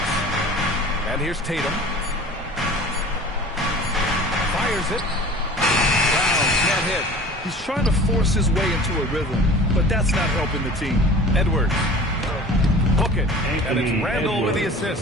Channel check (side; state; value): both; normal; correlation 0.42